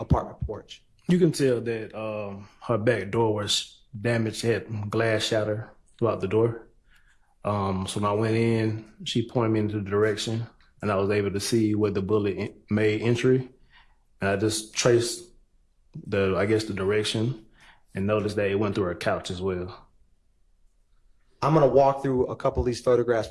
apartment porch? You can tell that her back door was damaged, had glass shatter throughout the door. So when I went in, she pointed me into the direction, and I was able to see where the bullet made entry. And I just traced the direction and noticed that it went through her couch as well. I'm going to walk through a couple of these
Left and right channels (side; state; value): both; identical; correlation 1.00